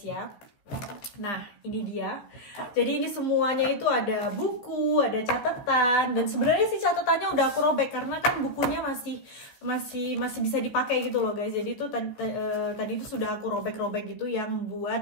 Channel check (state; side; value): late; right; 15 ms